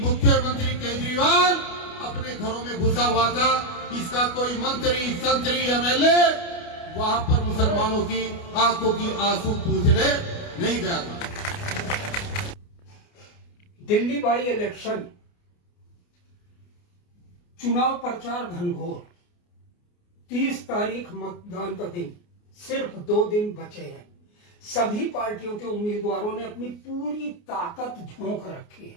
केजरीवाल अपने घरों में घुसा हुआ था। इसका कोई मंत्री संतरी एमएलए वहां पर मुसलमानों की आंखों की आंसू पूछने नहीं गया था। दिल्ली बाई इलेक्शन चुनाव प्रचार घनघोर। 30 तारीख मतदान का दिन, सिर्फ 2 दिन बचे हैं। सभी पार्टियों के उम्मीदवारों ने अपनी पूरी ताकत झोंक रखी है।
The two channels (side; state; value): right; late; 29 ms